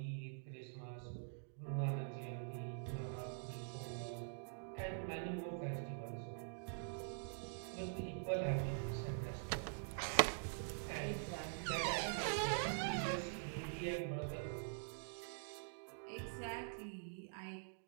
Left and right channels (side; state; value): left; silent; digital silence